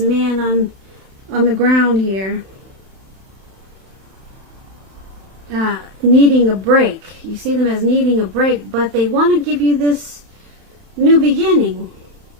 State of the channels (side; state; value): left; late; 31 ms